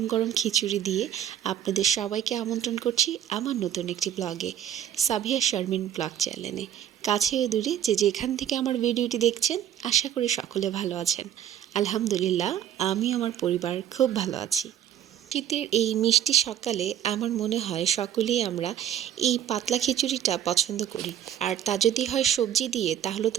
গরম খিচুড়ি দিয়ে আপনাদের সবাইকে আমন্ত্রণ করছি আমার নতুন একটি ব্লগে, সাবিয়া শারমিন ব্লগ চ্যানেলে। কাছে ও দূরে যে যেখান থেকে আমার ভিডিওটি দেখছেন, আশা করি সকলে ভালো আছেন। আলহামদুলিল্লাহ, আমি আমার পরিবার খুব ভালো আছি। শীতের এই মিষ্টি সকালে আমার মনে হয় সকলেই আমরা এই পাতলা খিচুড়িটা পছন্দ করি, আর তা যদি হয় সবজি দিয়ে তাহলে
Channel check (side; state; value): left; quieter; 10.4 dB